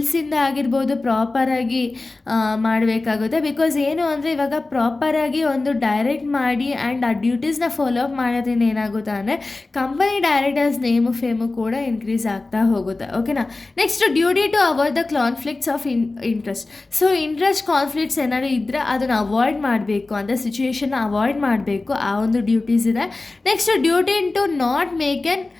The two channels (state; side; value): quieter; right; 3.3 dB